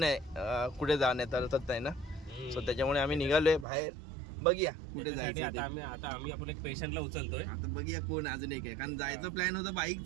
कुठे जाण्यात अर्थच नाही ना. सो त्याच्यामुळे आम्ही निघालोय बाहेर. बघूया कुठे जायचं. आता आम्ही आपण एक पेशंटला उचलतोय. आता बघूया कोण अजून एक आहे. कारण जायचं प्लॅन होतं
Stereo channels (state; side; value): drops out; left; at 3.7 s